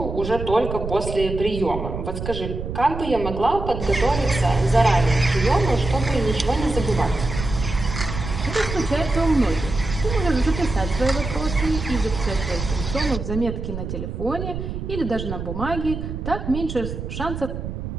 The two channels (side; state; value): right; noise; rumble, 6 dB below the sound